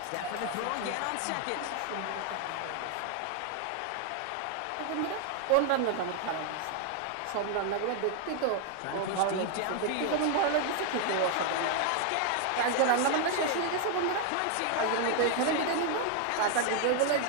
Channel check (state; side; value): different; both; correlation 0.00